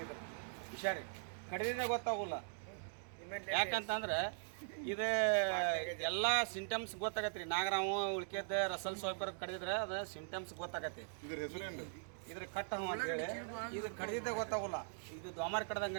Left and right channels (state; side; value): silent; left; digital silence